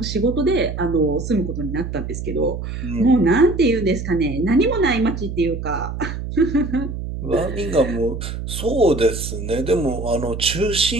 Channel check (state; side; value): noise; right; hum, 6 dB below the sound